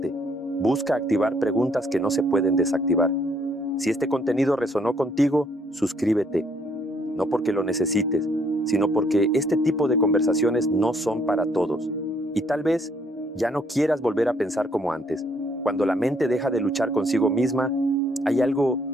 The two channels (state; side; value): normal; both; correlation 0.68